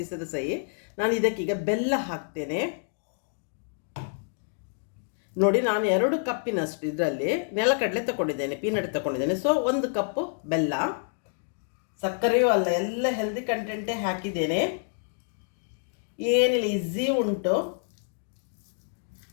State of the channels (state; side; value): silent; right; digital silence